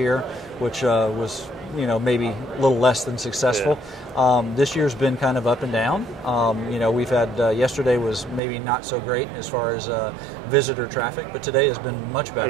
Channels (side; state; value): left; drops out; at 8.4 s